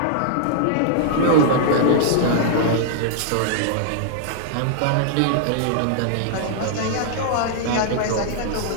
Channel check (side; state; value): both; different; correlation -0.01